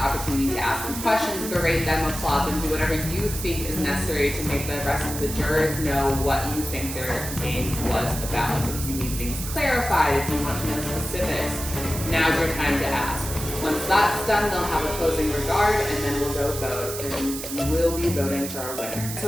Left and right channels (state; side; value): noise; right; hiss, 7 dB below the sound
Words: opportunity to ask them questions, berate them, applaud them, do whatever you think is necessary to make the rest of the jurors know what you think their game was about. If you need things clarified, if you want to know specifics, now's your time to ask. Once that's done, they'll have a closing regard, and then we'll go vote, and we'll be voting for our winner. So